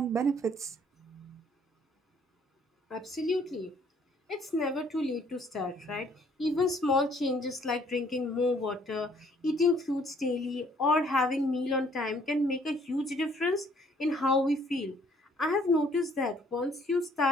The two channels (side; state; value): both; normal; correlation 0.62